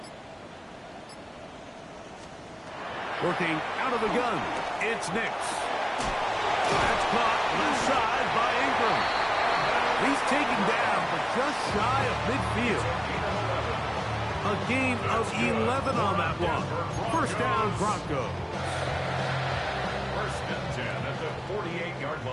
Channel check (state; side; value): identical; both; correlation 1.00